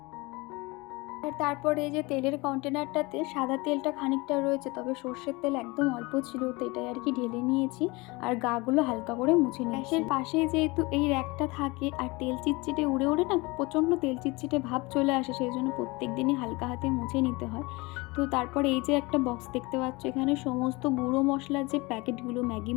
আর তারপরে এই যে তেলের কন্টেনারটাতে সাদা তেলটা খানিকটা রয়েছে, তবে সর্ষের তেল একদম অল্প ছিল, তো এটাই আর কি ঢেলে নিয়েছি আর গাগুলো হালকা করে মুছে নিয়েছি। গ্যাসের পাশেই যেহেতু এই র্যাকটা থাকে আর তেল চিটচিটে উড়ে উড়ে না প্রচণ্ড তেল চিটচিটে ভাব চলে আসে, সেই জন্য প্রত্যেক দিনই হালকা হাতে মুছে নিতে হয়। তো তারপরে এই যে একটা বক্স দেখতে পাচ্ছ, এখানে সমস্ত গুঁড়ো মশলার যে প্যাকেটগুলো, ম্যাগি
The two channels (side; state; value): right; quieter; 24.4 dB